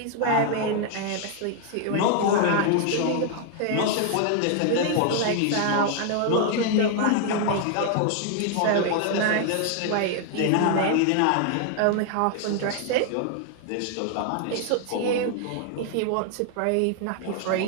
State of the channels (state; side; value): different; both; correlation 0.00